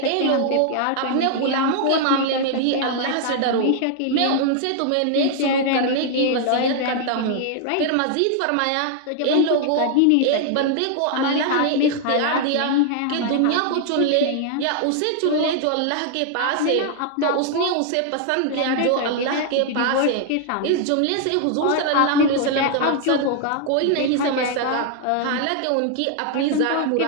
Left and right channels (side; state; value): both; different; correlation 0.00